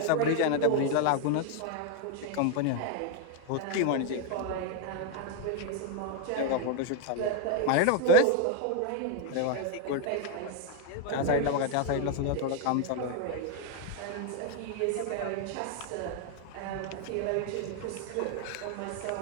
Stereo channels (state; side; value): different; both; correlation 0.01